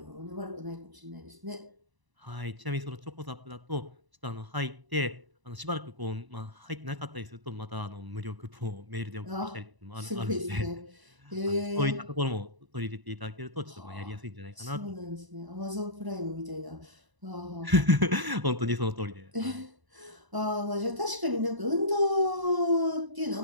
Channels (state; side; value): late; left; 1.0 ms